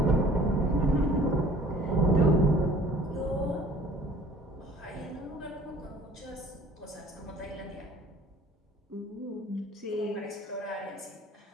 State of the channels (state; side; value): normal; both; correlation 0.52